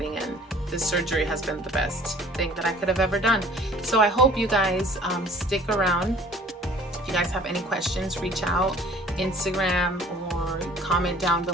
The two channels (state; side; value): normal; both; correlation 0.51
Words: And this surgery has been the best thing that I could have ever done. So I hope you guys stick around. If you guys have any questions, reach out, Instagram, or comment down